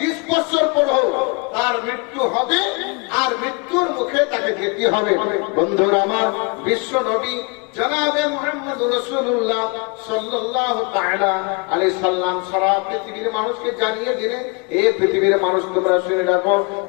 বছর পরে হোক, তার মৃত্যু হবে, আর মৃত্যুর মুখে তাকে যেতে হবে। বন্ধুরা আমার, বিশ্ব নবী জনাবে মুহাম্মদ রাসূলুল্লাহ সাল্লাল্লাহু তাআলা আলাইহি সাল্লাম সারা পৃথিবীর মানুষকে জানিয়ে দিলেন, এই পৃথিবীর মানুষ তোমরা শুনে রাখো,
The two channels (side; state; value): right; quieter; 32.1 dB